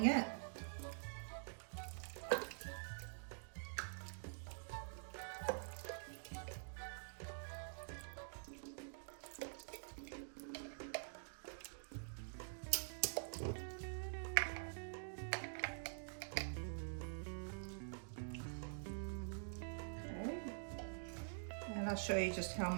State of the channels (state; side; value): silent; left; digital silence